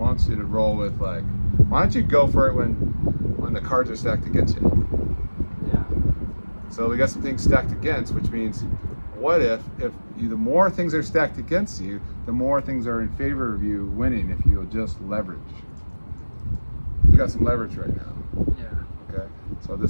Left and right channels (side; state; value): both; inverted; correlation -1.00